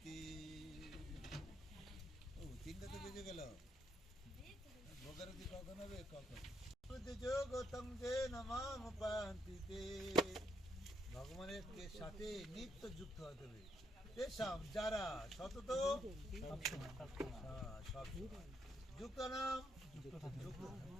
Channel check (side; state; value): both; normal; correlation 0.75